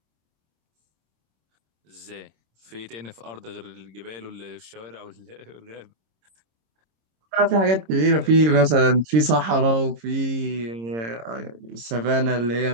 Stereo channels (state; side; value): late; left; 26 ms